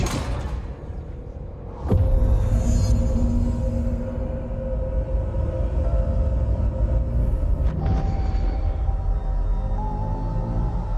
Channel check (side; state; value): both; identical; correlation 1.00